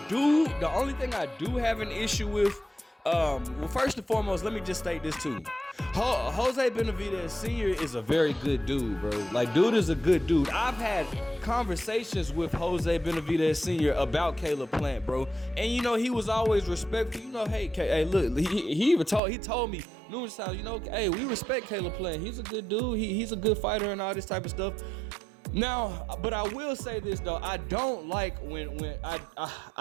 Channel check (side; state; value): left; drops out; at 19.2 s